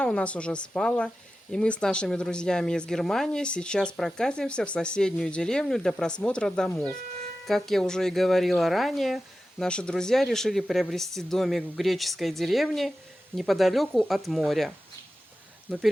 у нас уже спала, и мы с нашими друзьями из Германии сейчас прокатимся в соседнюю деревню для просмотра домов. Как я уже и говорила ранее, наши друзья решили приобрести домик в греческой деревне неподалеку от моря. Но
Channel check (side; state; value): both; normal; correlation 0.93